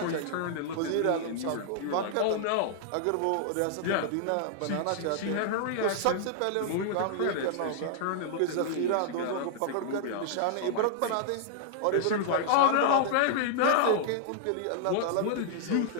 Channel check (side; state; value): both; different; correlation -0.01